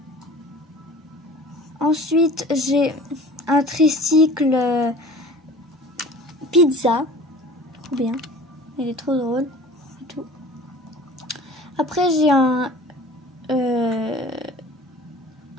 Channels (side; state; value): both; normal; correlation 0.43